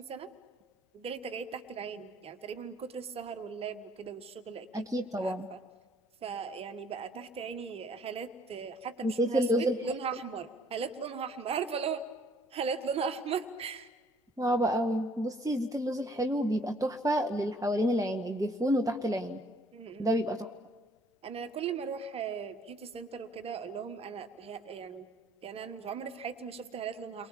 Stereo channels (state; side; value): normal; both; correlation 0.60